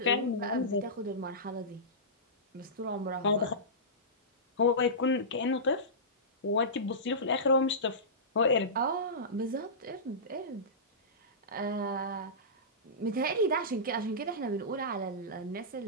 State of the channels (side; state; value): both; normal; correlation -0.18